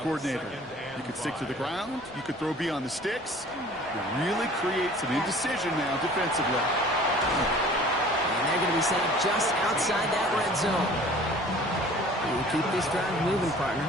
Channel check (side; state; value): both; normal; correlation 0.48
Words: coordinator. You could stick to the ground. You could throw beyond the sticks. You really create some indecision now defensively. And they're going to be set up just outside that red zone. And keep this drive moving, partner.